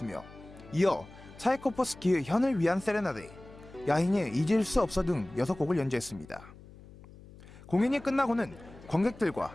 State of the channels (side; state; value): left; noise; hum, 20 dB below the sound